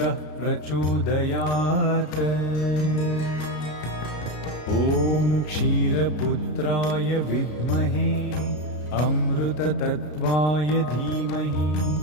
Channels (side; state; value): right; late; 33 ms